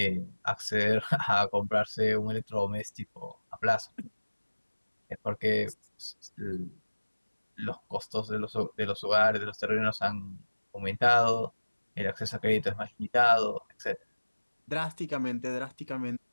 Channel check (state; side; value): inverted; both; correlation -1.00